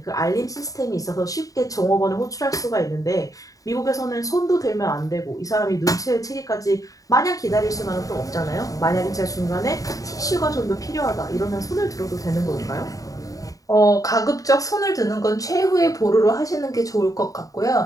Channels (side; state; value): right; late; 0.17 ms